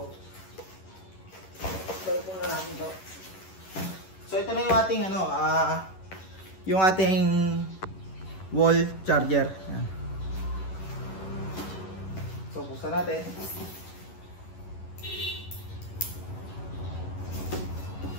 ito na natin ito. So, ito na yung ating, yung ating wall charger. Ayan. So, buksan natin.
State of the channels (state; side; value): late; right; 11 ms